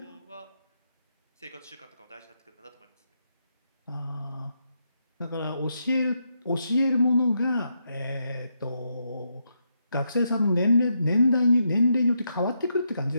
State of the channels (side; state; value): both; inverted; correlation -0.81